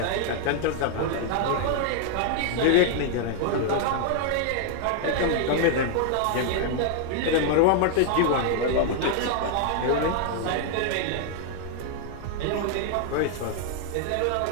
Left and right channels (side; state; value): both; different; correlation 0.00